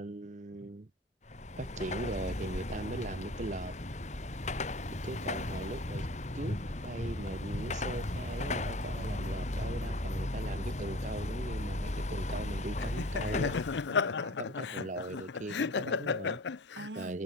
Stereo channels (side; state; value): both; normal; correlation 0.41